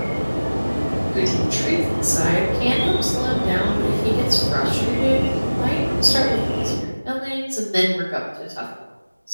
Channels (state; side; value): inverted; both; correlation -1.00